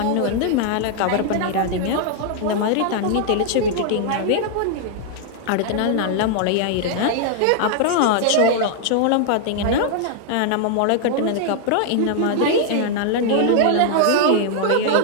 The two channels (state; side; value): different; both; correlation 0.00